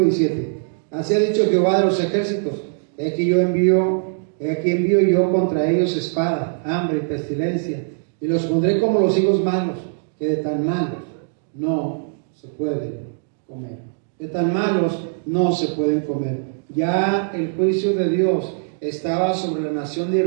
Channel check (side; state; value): left; silent; digital silence